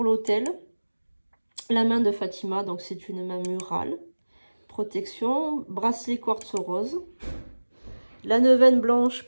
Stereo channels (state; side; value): inverted; both; correlation -1.00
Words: l'autel. La main de Fatima, donc c'est une main murale. protection, bracelet quartz rose, la neuvaine blanche